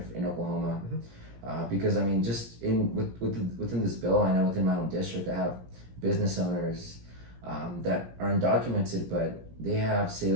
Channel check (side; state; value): left; late; 17 ms